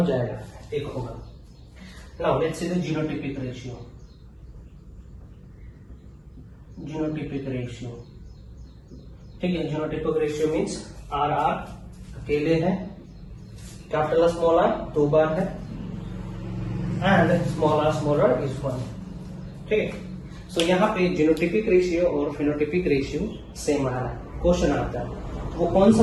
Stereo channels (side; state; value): both; identical; correlation 1.00